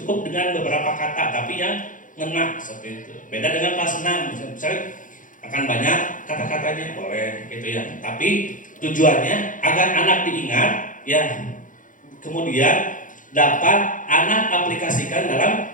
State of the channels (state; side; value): late; right; 0.38 ms